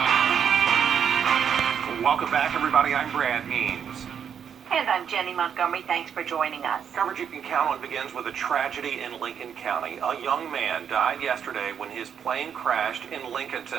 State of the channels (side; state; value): left; quieter; 8.0 dB